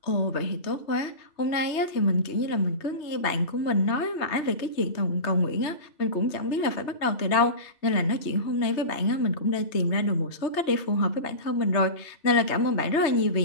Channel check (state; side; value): late; right; 3.2 ms